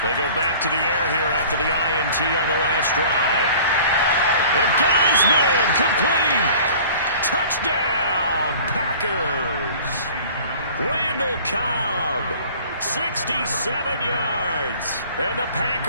They go back to the air here after the INT on the last drive. And got his man complete. Touchdown, Packers. Randall Cobb, 67 yards. And the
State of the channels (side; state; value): both; inverted; correlation -0.46